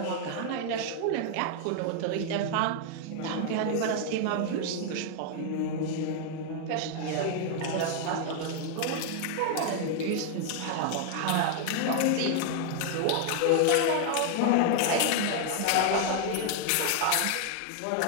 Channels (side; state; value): both; different; correlation 0.00